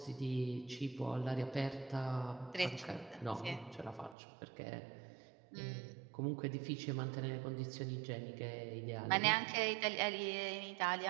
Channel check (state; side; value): drops out; left; at 4.2 s